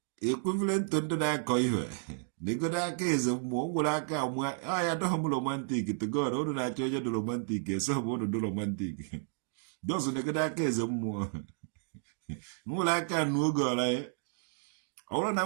Equivalent to ndị na-akọ ihe. Negoda eze mmụọ nwere aka amụa ya adọghị m romantik to God unu na-achọ onye dị romantik eso bụ unu dị romantik dọzụ negoda aka eze mmụọ nwere aka anụ oge ọla ya ọ bụrụ na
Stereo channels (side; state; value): left; silent; digital silence